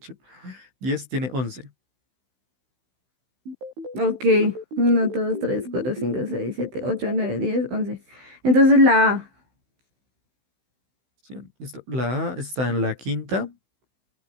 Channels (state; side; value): late; left; 16 ms